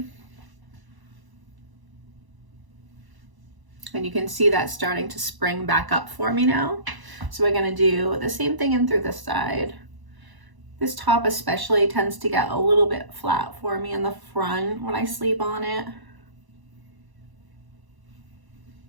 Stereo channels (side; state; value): left; late; 1.0 ms